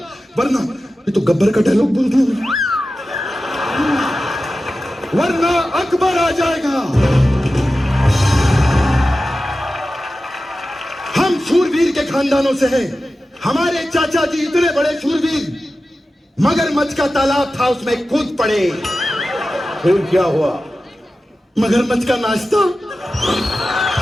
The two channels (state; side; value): normal; both; correlation 0.94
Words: वरना ये तो गब्बर का डायलॉग बोल दिया, वरना अकबर आ जाएगा। हम शूरवीर के खानदानों से हैं। हमारे चाचा जी इतने बड़े शूरवीर, मगरमच्छ का तालाब था, उसमें कूद पड़े। फिर क्या हुआ? मगरमच्छ का नाश्ता।